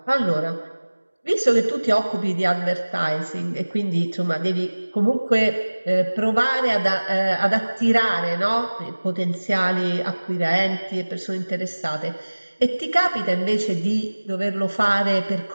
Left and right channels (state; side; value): inverted; both; correlation -1.00